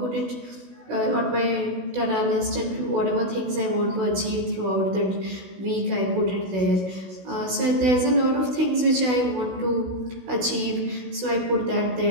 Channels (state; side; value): late; left; 16 ms